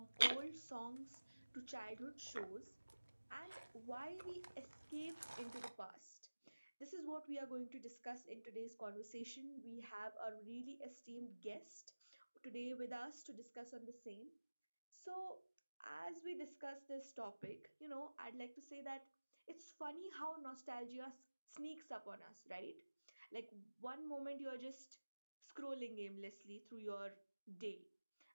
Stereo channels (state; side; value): inverted; both; correlation -1.00